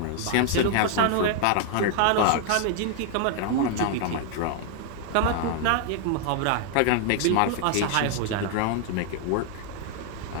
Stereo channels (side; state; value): both; different; correlation 0.00